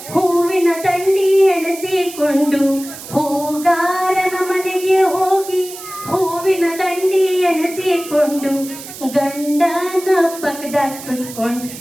ಹೂವಿನ ತಂಡಿ ಎಣಸಿಕೊಂಡು, ಹೂಗಾರನ ಮನೆಗೆ ಹೋಗಿ ಹೂವಿನ ದಂಡಿ ಎಣಸಿಕೊಂಡು, ಗಂಡನ ಪಕ್ಕದಾಗ ಕುತ್ಕೊಂಡು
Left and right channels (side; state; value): right; noise; hiss, 13 dB below the sound